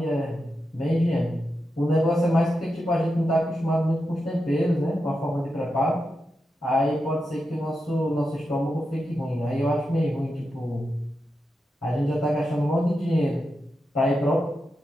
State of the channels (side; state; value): both; normal; correlation 0.88